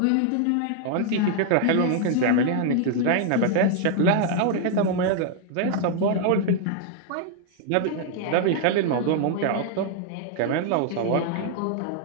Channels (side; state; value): both; different; correlation 0.00